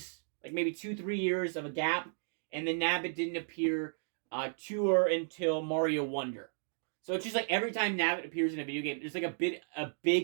like maybe 2-3 years of a gap, and then Nabbit didn't appear Tour until Mario Wonder. So it's just like every time Nabbit appears in a video game, there's like a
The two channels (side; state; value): left; silent; digital silence